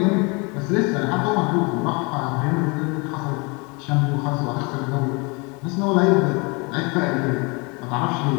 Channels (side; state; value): right; quieter; 29.6 dB